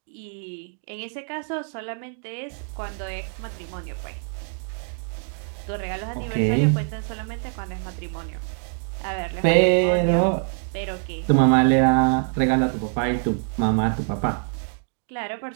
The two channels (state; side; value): silent; left; 62 dB below the other